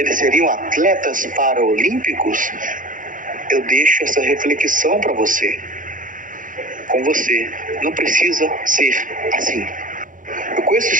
seriam atletas paraolímpicos? Eu deixo essa reflexão para você. Com você, não precisa ser assim. Eu conheço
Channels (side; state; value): left; late; 0.38 ms